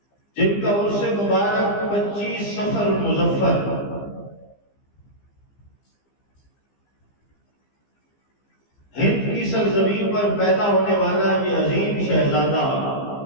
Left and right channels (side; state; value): right; late; 15 ms